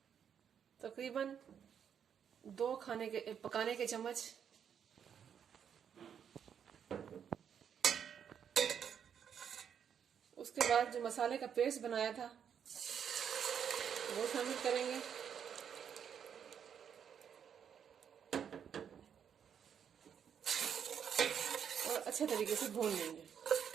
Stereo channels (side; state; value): left; quieter; 8.0 dB